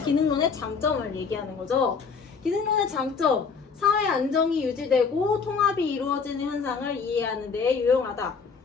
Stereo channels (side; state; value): right; quieter; 5.5 dB